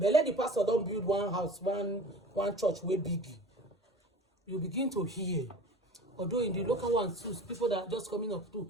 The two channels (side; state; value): both; normal; correlation 0.40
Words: let the pastor don't build one house, one church way big. You begin to hear. Although in the local ones too, people that are just coming up too,